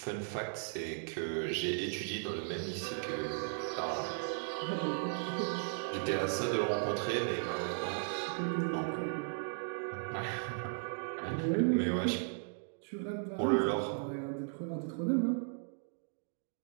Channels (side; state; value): left; silent; digital silence